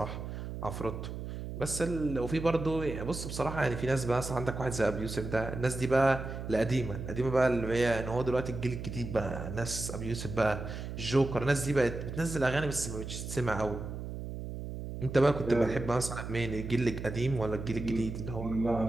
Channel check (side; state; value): right; noise; hum, 7 dB below the sound